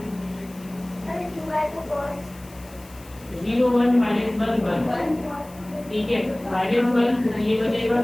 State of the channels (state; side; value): noise; left; hiss, 23 dB below the sound